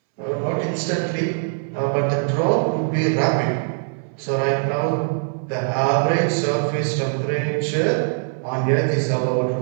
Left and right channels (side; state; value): left; silent; 64 dB below the other